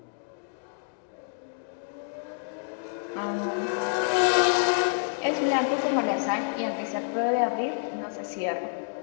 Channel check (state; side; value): silent; right; digital silence